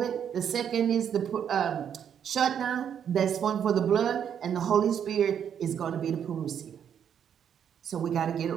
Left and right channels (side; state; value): left; quieter; 8.6 dB